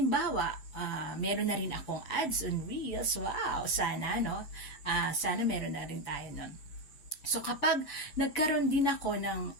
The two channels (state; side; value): late; right; 7.0 ms